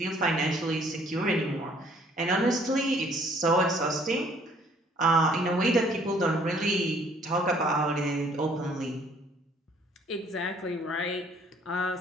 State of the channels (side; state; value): both; normal; correlation 0.60